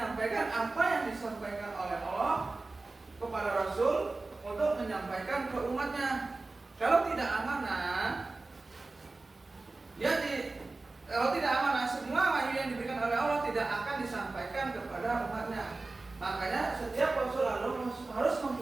apa yang disampaikan oleh Allah kepada Rasul untuk menyampaikan ke umatnya. Kalau tidak amanah, kalau tidak amanah, semua wahyu yang diberikan oleh Allah tidak akan disampaikan kepada umatnya. Makanya setiap Rasul harus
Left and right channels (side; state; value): left; quieter; 3.4 dB